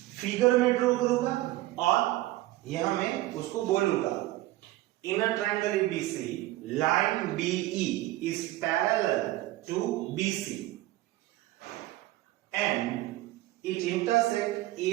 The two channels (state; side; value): quieter; left; 17.1 dB